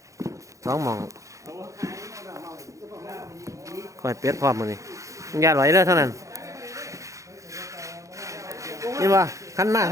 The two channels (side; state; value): left; late; 0.15 ms